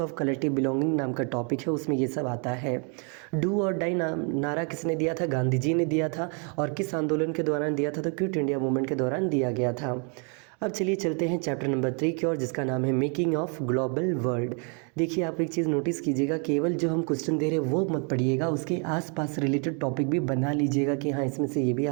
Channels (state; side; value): quieter; left; 38.1 dB